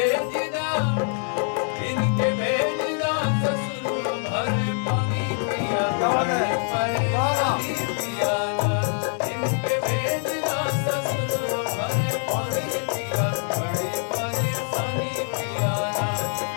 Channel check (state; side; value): silent; right; 62 dB below the other